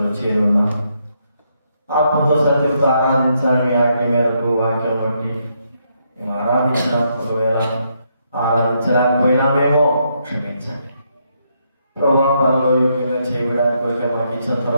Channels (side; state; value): both; inverted; correlation -0.77